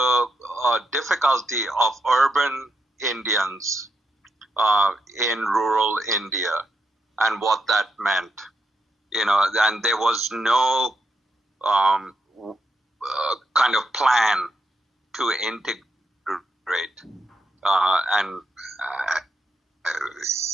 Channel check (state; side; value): normal; both; correlation 0.82